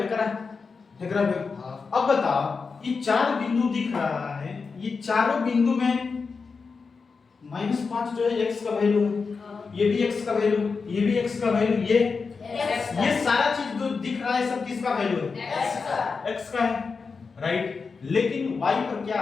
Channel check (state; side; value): quieter; right; 4.9 dB